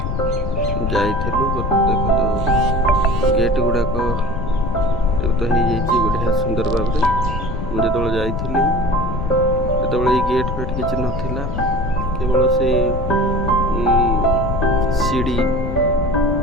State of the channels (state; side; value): noise; left; rumble, 4 dB below the sound